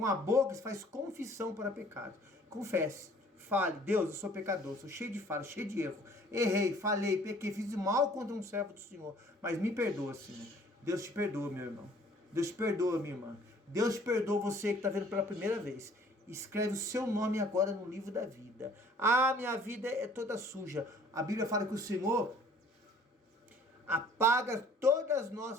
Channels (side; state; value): both; normal; correlation 0.55